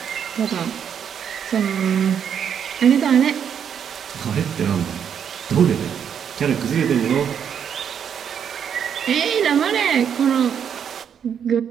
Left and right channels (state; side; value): quieter; left; 8.1 dB